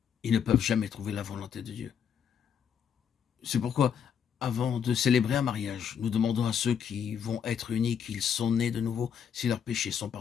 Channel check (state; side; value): quieter; right; 7.8 dB